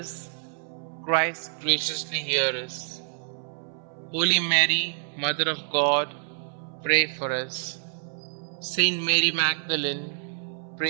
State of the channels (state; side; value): silent; left; 60 dB below the other